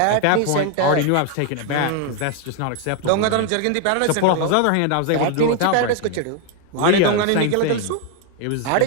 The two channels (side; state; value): both; different; correlation 0.01